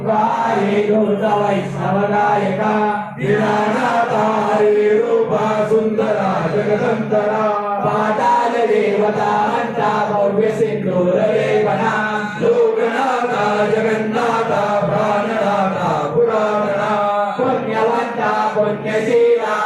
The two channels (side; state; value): both; identical; correlation 1.00